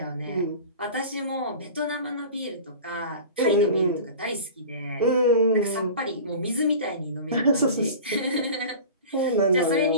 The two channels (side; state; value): both; inverted; correlation -0.36